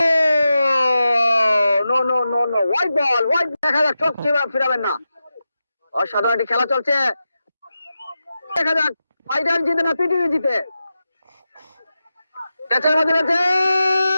no no no no, white ball, white. দেখা যাক চোখ ফিরাবেন না। অসাধারণ একটি খেলা চলছে, দেখা যাক ফাইনাল জিতে না পিটিভি জিতে। ক্যাচের মধ্যে রয়েছে,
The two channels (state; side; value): inverted; both; correlation -0.91